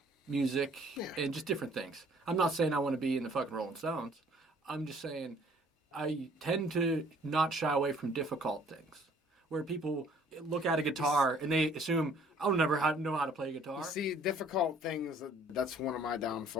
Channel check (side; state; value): both; normal; correlation 0.58